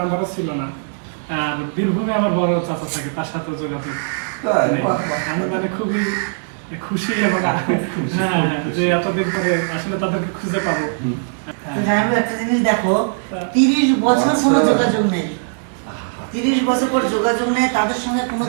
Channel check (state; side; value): silent; left; digital silence